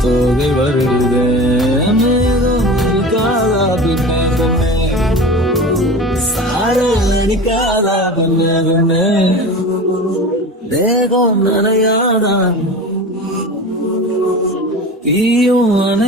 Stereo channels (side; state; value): both; normal; correlation 0.33